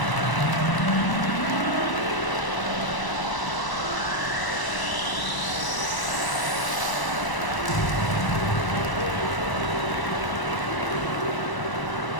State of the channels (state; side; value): late; right; 1.0 ms